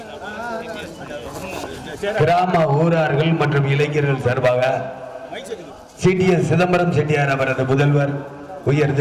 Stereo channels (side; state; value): both; identical; correlation 1.00